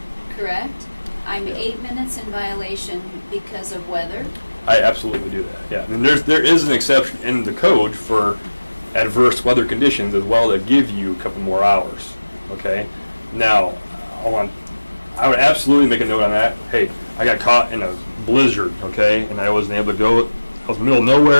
correct? I'm 8 minutes in violation because of weather. I absolutely do that. Yeah, and there is an exception in the code for adverse weather conditions as well that give you a couple more hours. Okay. Now, I would absolutely make a note on that. Hey, I got caught in a blizzard, okay, and I wasn't able to go. I was in the middle of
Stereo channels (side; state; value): both; inverted; correlation -1.00